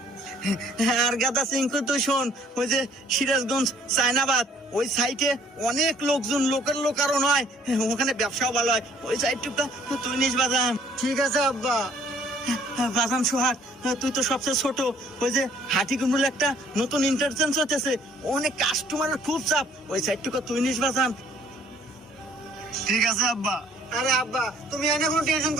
আর গাদা সিংকু তুই শোন, ওই যে সিরাজগঞ্জ চায়নাবাদ ওই সাইটে অনেক লোকজন, লোকের লোক আরো নয়, ওখানে ব্যবসাও ভালো হয়, ওই সাইড টুকা তুই নিস বাজান। ঠিক আছে আব্বা। বাজান সোহাগ, তুই তো সবচেয়ে ছোট, ওই যে হাটিকুমরুল একটা নতুন ইন্টারচেঞ্জ হতেছে, অনেক কাস্টমারের খুব চাপ, ওই সাইড টুকা তুই নিস বাজান। ঠিক আছে আব্বা। আরে আব্বা তুমি এনে কোনো টেনশন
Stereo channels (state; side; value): normal; both; correlation 0.60